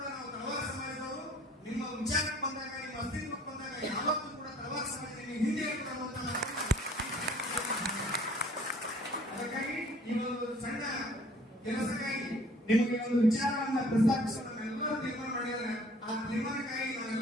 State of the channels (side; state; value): both; normal; correlation 0.54